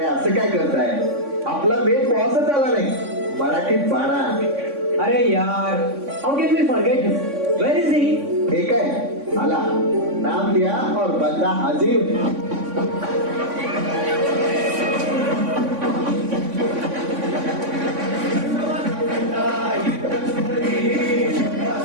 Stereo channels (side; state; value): left; late; 3.5 ms